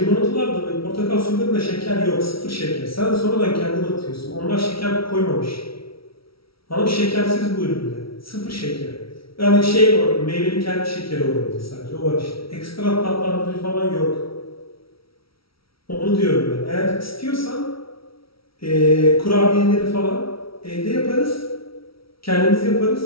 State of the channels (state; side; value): late; right; 0.75 ms